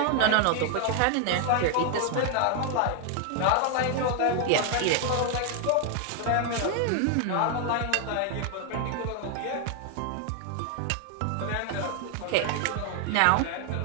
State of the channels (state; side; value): different; both; correlation 0.00